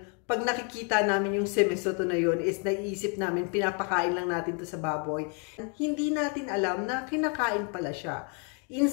pag nakikita namin yung semisotu na yun is naiisip namin pinapakain lang natin to sa baboy. Hindi natin alam na kinakain pala siya.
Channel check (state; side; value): quieter; right; 37.6 dB